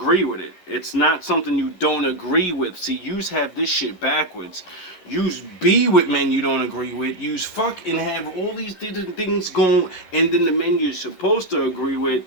with it. It's not something you don't agree with. See, yous have this shit backwards. Yous be with men you don't agree with. Yous fuck and have all these different things going, and then the men you're supposed to agree with,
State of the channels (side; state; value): right; late; 11 ms